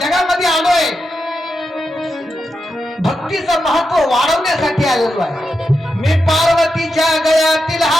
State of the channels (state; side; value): normal; both; correlation 0.87